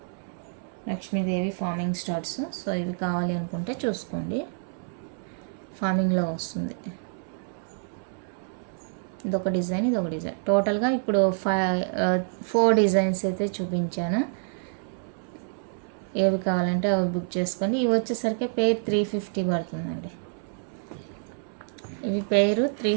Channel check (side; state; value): left; silent; 60 dB below the other